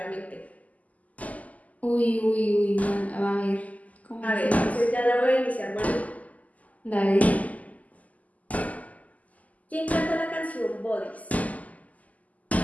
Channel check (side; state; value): right; late; 0.075 ms